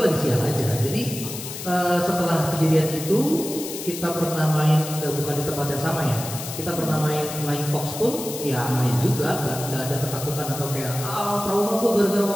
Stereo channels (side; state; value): left; noise; hiss, 9 dB below the sound